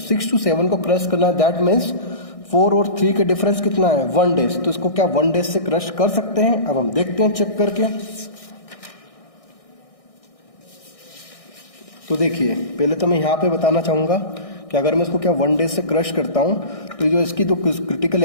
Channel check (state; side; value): late; right; 1.6 ms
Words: to 7 को क्रश करना है, दैट मीन्स 4 और 3 के डिफरेंस कितना है 1 डेज, तो इसको क्या 1 डेज से क्रश कर सकते हैं। अब हम देखते हैं चेक करके। तो देखिए पहले तो मैं यहाँ पे बताना चाहूंगा कि अगर मैं इसको क्या 1 डेज से क्रश करता हूँ, तो जो इसकी तो क्रिटिकल